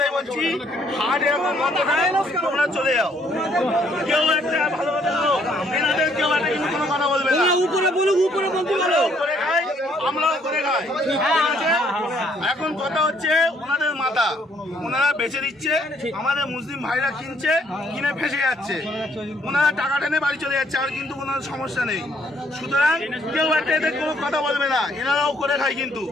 বলছি, হাট এখন বন্ধ হয়, তোমরা চলে যাও। কেউ একটা ভালো কথা বলো, এনাদের কেউ একটা কিন্তু কোনো কথা বলবে না। উপরে বলুক, উপরে বলতে পারো, করে খাই, আমরাও করে খাই। এখন কথা হচ্ছে ওনাদের মাথা, ওনারা বেচে দিচ্ছে, আমাদের মুসলিম ভাইরা কিনছে, কিনে ফেসে যাচ্ছে, ওনারা টাকা টেনে বাড়ি চলে যাচ্ছে, আর কিন্তু কোনো সমস্যা নেই। সুতরাং কেউ একটা এদের কোনো কথা বলবে না, এনারাও করে খায়। কিন্তু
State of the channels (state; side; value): normal; both; correlation 0.67